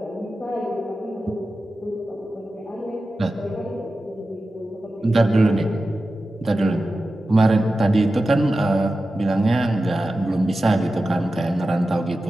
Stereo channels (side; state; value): both; normal; correlation 0.93